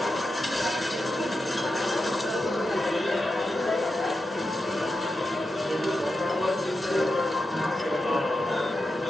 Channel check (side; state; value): both; normal; correlation 0.89